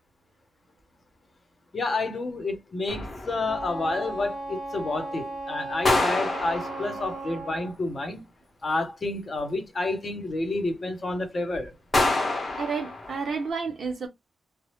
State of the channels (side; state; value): both; normal; correlation 0.86